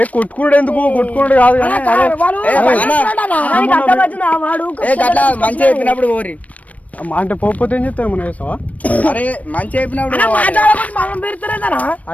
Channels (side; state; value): right; late; 0.069 ms